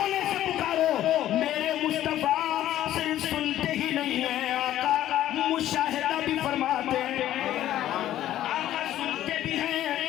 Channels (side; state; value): right; quieter; 12.8 dB